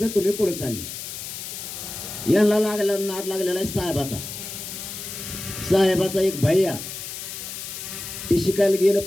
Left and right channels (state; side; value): noise; left; hiss, 8 dB below the sound